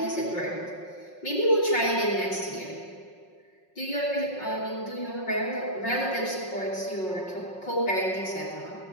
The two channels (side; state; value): right; late; 5.5 ms